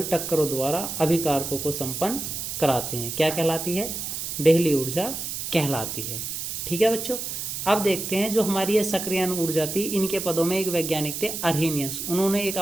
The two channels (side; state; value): right; noise; hiss, 5 dB below the sound